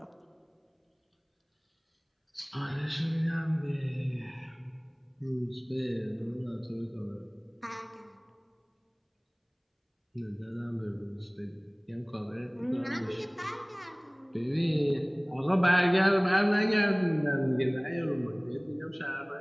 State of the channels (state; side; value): identical; both; correlation 1.00